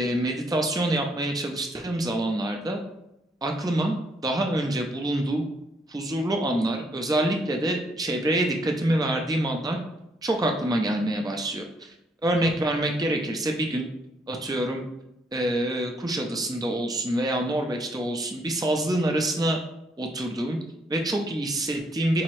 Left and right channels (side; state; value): both; normal; correlation 0.71